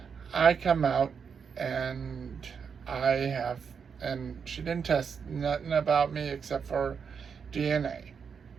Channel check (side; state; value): left; quieter; 6.4 dB